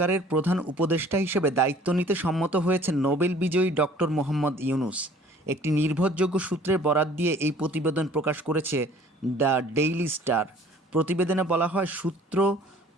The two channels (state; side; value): normal; both; correlation 0.53